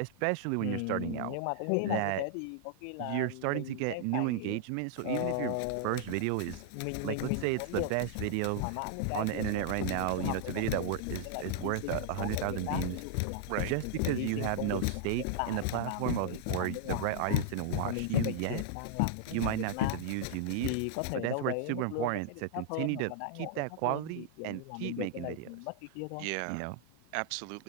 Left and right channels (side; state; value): both; different; correlation -0.01